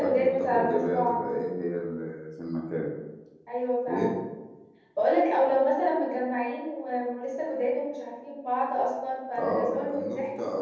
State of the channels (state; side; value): identical; both; correlation 1.00